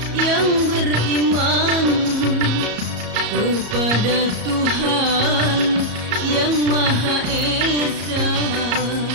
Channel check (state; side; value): late; left; 34 ms